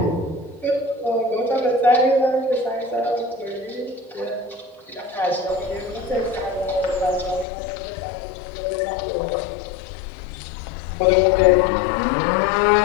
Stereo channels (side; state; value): right; drops out; at 7.5 s